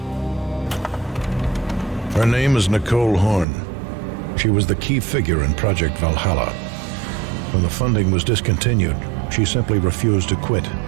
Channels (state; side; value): drops out; left; at 3.5 s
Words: Her name is Nicole Horn. She was the key figure in Project Valhalla. When the funding was discontinued, she simply refused to quit.